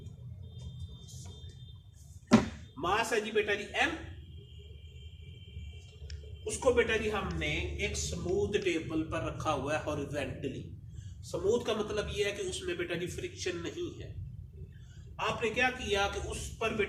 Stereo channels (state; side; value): identical; both; correlation 1.00